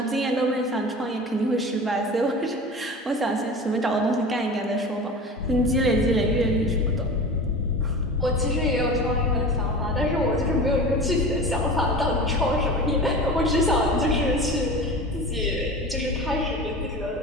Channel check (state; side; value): normal; both; correlation 0.34